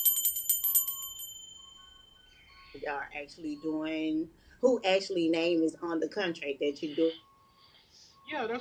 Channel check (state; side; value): identical; both; correlation 1.00